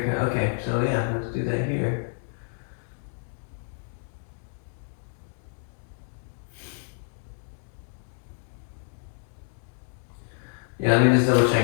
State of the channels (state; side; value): silent; right; digital silence